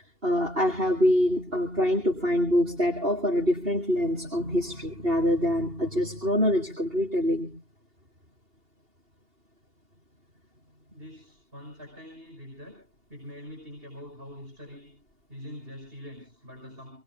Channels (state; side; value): late; left; 2.8 ms